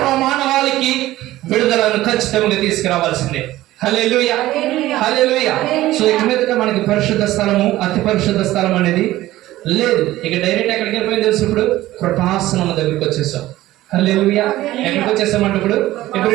విడుదలను ఖచ్చితంగా తీసుకురావాల్సిందే. హల్లెలూయా. హల్లెలూయా. సో ఇక మీదట మనకి పరిశుద్ధ స్థలము, అతి పరిశుద్ధ స్థలం అనేది లేదు. ఇక డైరెక్ట్ ఎక్కడికి వెళ్ళిపోయింది తెలుసు? ఇప్పుడు కృపాసనం దగ్గరికి వచ్చేసాం. హల్లెలూయా. ఎక్కడికి వచ్చేసామంటే ఇప్పుడు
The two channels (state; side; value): quieter; left; 15.9 dB